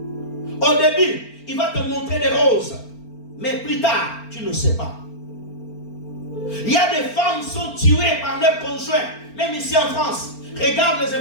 Au début, il va te montrer des roses. Mais plus tard, tu ne sais pas. Il y a des femmes qui sont tuées par leurs conjoints, même ici en France. Regarde les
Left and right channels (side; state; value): right; late; 4.4 ms